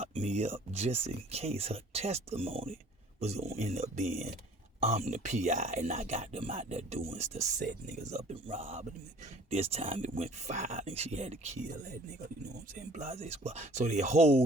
me up just in case her testimony was going to end up being, I'm the PI and I got them out there doing stuff, set niggas up and robbing them. This time it went violent. She had to kill that nigga, you know what I'm saying? Blase squad. So they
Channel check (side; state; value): both; normal; correlation 0.52